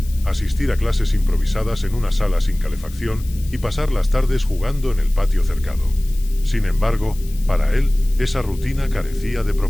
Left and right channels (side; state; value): left; noise; hiss, 20 dB below the sound